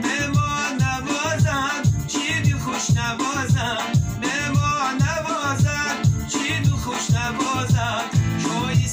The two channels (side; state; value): both; identical; correlation 1.00